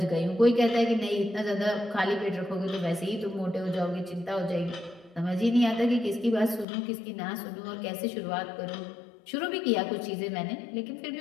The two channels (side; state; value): right; drops out; at 6.7 s